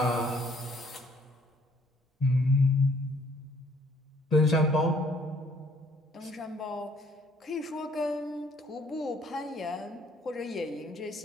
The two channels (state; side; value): normal; both; correlation 0.62